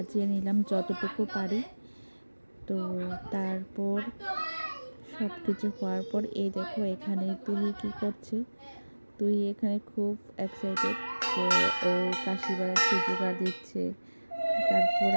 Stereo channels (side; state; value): both; inverted; correlation -1.00